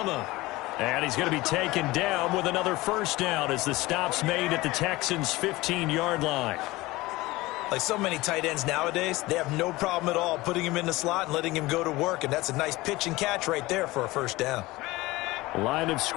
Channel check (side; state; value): right; quieter; 20.0 dB